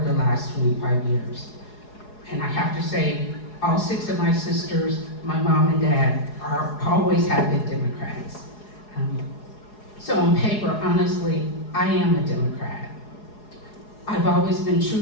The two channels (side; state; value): right; late; 4.8 ms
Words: the last 25 years. And I have to say, all 6 of my sisters, my mom and dad, always have been Democrats. So on paper, honestly, I am a Democrat. I've always been